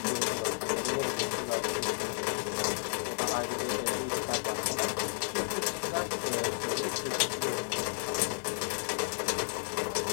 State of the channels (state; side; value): silent; right; 56 dB below the other